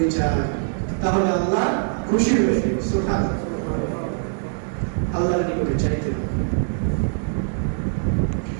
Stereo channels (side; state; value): left; silent; 64 dB below the other